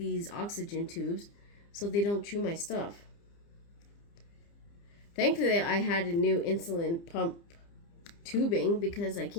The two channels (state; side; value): late; right; 30 ms